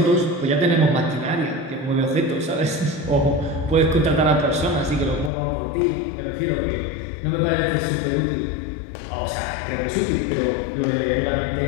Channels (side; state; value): right; drops out; at 5.3 s